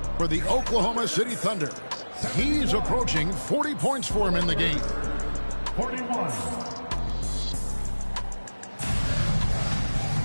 for the Oklahoma City Thunder. He's approaching 40 points for him in the game. 41.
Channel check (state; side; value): inverted; both; correlation -1.00